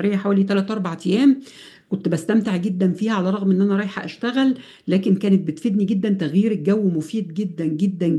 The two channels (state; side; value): identical; both; correlation 1.00